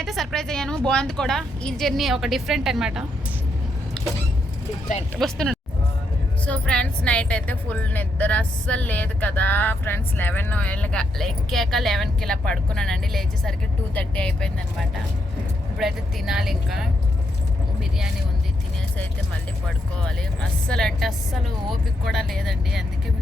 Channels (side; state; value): both; normal; correlation 0.79